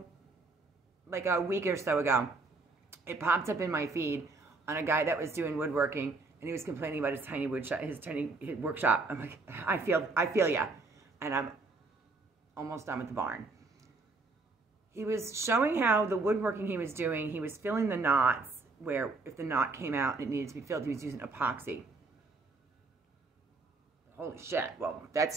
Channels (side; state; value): left; quieter; 3.6 dB